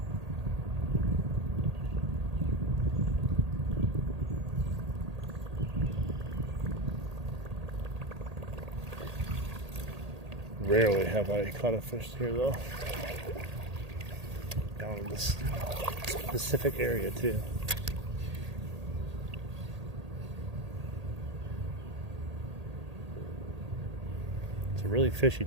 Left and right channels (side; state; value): left; late; 1.8 ms